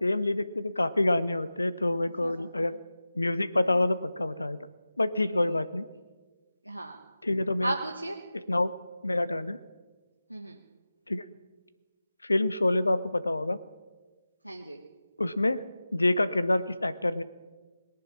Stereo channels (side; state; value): both; inverted; correlation -0.95